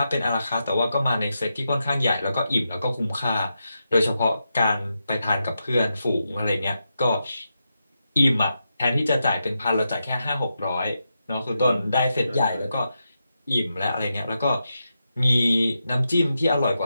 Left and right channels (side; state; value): both; inverted; correlation -0.87